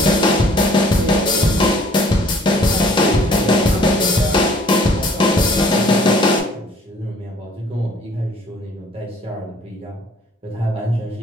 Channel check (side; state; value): both; normal; correlation 0.57